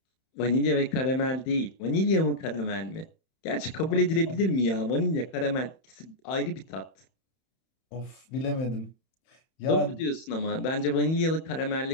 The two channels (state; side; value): late; right; 31 ms